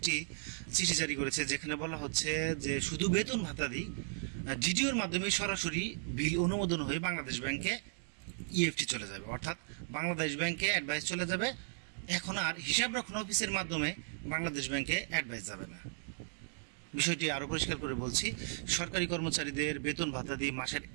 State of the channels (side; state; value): left; silent; digital silence